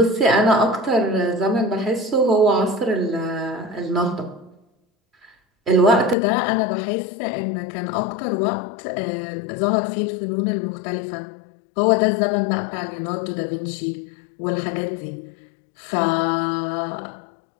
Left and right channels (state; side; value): drops out; right; at 6.2 s